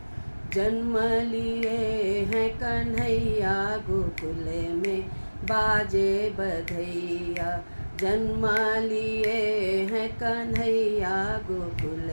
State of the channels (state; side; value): inverted; both; correlation -1.00